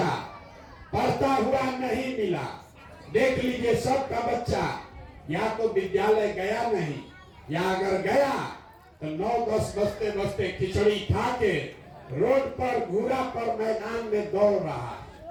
पढ़ता हुआ नहीं मिला। देख लीजिए, सबका बच्चा या तो विद्यालय गया नहीं, या अगर गया तो 9-10 बजते बजते खिचड़ी खा के रोड पर घूरा पर मैदान में दौड़ रहा।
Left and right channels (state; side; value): identical; both; correlation 1.00